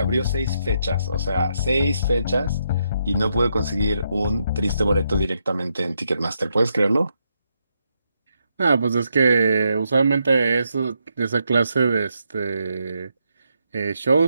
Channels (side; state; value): both; inverted; correlation -0.80